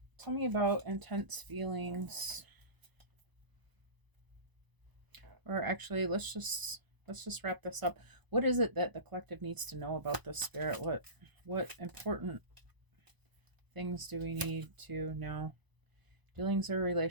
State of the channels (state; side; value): late; left; 1.0 ms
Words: tell me about intense feelings. Or actually, let's just wrap this up. What is it that the collective needs to know about this, Spirit? What important things do we need to know? Dealings or